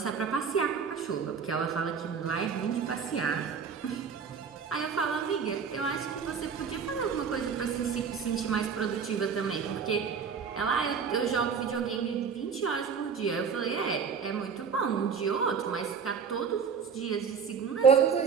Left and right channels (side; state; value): left; quieter; 6.2 dB